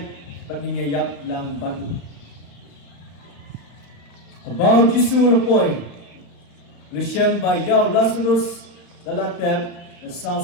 pat nginyayap lang batu. Kabau Jisu lepoi. Lisham ba yaw Lazarus lalatep na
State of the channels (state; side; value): late; right; 35 ms